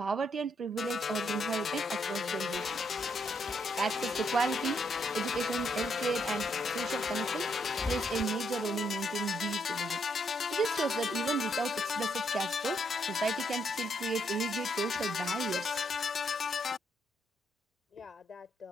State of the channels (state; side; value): normal; both; correlation 0.75